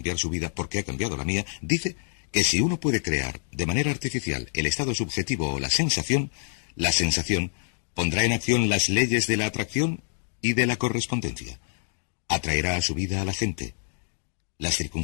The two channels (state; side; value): silent; right; digital silence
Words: su vida porque ha cambiado la mía, dice que si uno puede crear de manera artificial el estado subjetivo o la sensación pondrá en acción las leyes de la atracción y de la correspondencia. Atraerá a su vida a la gente, las